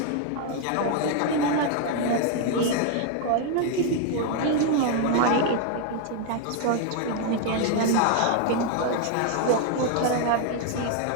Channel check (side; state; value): both; different; correlation 0.00